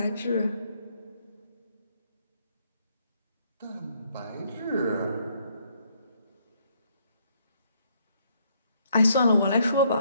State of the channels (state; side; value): inverted; both; correlation -0.70